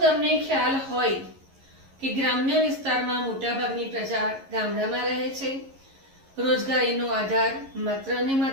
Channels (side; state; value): left; late; 11 ms